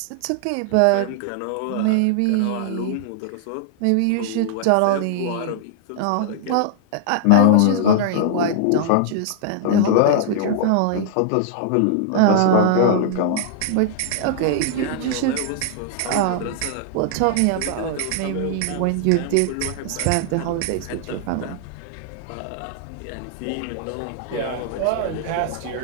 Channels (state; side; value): different; both; correlation -0.01